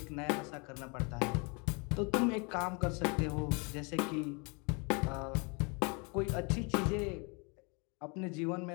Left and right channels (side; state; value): right; quieter; 31.7 dB